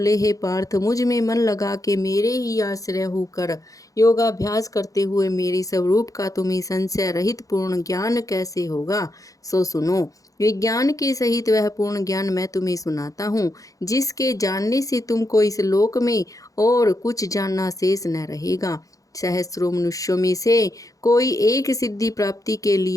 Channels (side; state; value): right; late; 0.17 ms